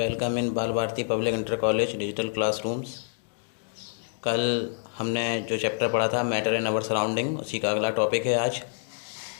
in Bal Bharati public inter college digital classrooms. कल हमने जो चैप्टर पढ़ा था मैटर इन आवर सराउंडिंग, उसी का अगला टॉपिक है आज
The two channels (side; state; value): right; silent; digital silence